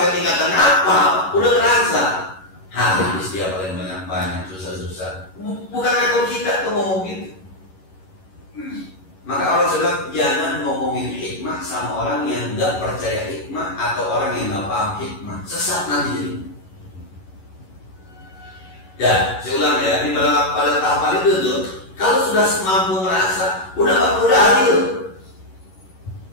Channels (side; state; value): right; late; 11 ms